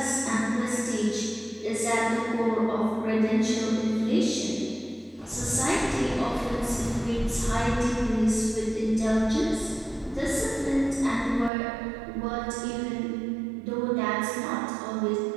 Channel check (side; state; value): left; drops out; at 11.5 s